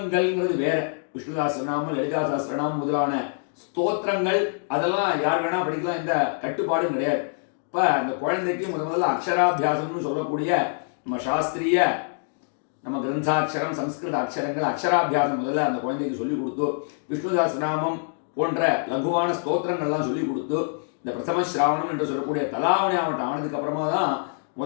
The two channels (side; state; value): right; silent; digital silence